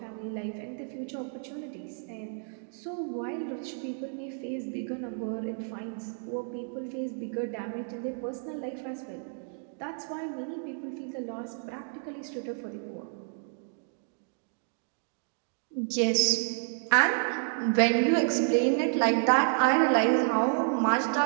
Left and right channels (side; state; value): left; silent; 57 dB below the other